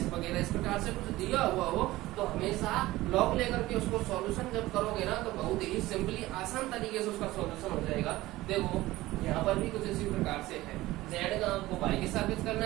वगैरह इस प्रकार से कुछ दिया हुआ हो तो हमेशा लॉग लेकर के उसको सॉल्यूशन जब करोगे ना तो बहुत ही सिंपली आसान तरीके से उसका सॉल्यूशन हो जाएगा। देखो यहाँ पर भी कुछ इसी प्रकार से है। जेड का आपको वाई के सापेक्ष करना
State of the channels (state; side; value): quieter; left; 17.7 dB